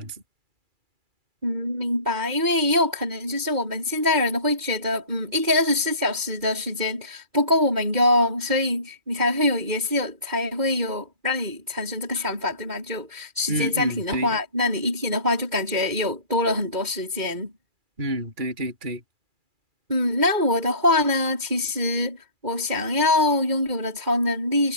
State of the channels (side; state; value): left; late; 2.4 ms